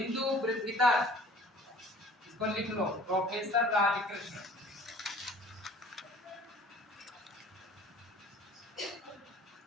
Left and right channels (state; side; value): normal; both; correlation 0.49